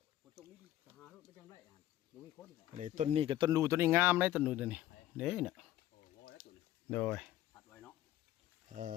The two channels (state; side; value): quieter; right; 13.6 dB